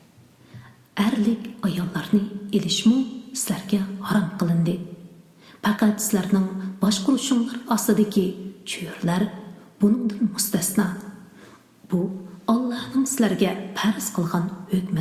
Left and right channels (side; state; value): both; identical; correlation 1.00